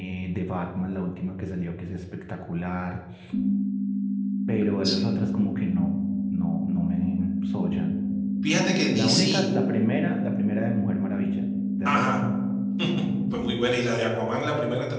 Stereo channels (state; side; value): identical; both; correlation 1.00